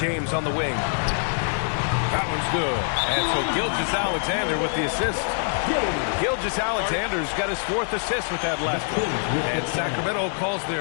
on the wing. That one's good. And so Gilgeous-Alexander with the assist. Gilgeous-Alexander's got his 4th assist with that last one. And Sacramento calls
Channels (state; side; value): silent; right; digital silence